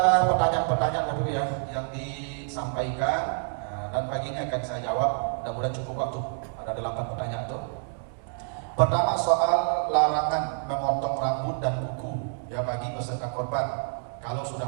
pertanyaan-pertanyaan Bapak ya yang disampaikan, dan pagi ini akan saya jawab. Mudah-mudahan cukup waktu. Ada 8 pertanyaan tuh. Pertama, soal larangan memotong rambut dan kuku ya bagi peserta korban kalau sudah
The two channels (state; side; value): silent; left; 60 dB below the other